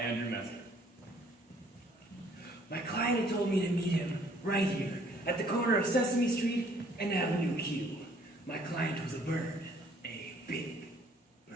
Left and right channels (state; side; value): normal; both; correlation 0.60